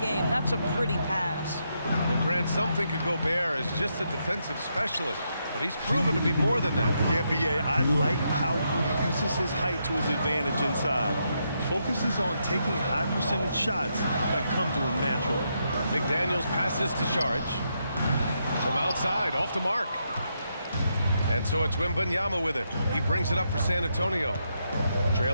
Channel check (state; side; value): inverted; both; correlation -0.80